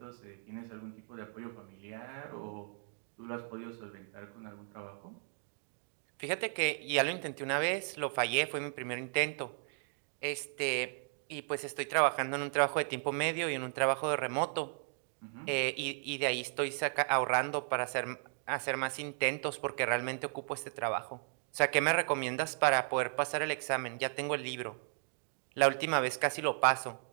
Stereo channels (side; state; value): left; silent; digital silence